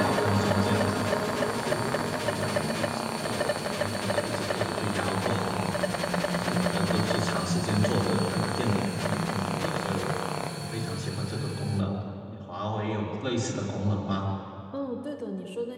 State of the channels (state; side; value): identical; both; correlation 1.00